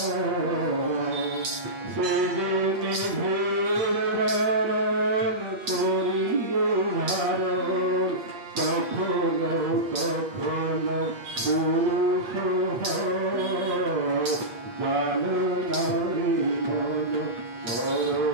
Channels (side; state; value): left; late; 8.2 ms